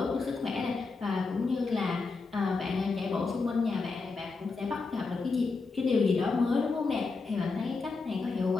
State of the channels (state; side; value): quieter; right; 4.2 dB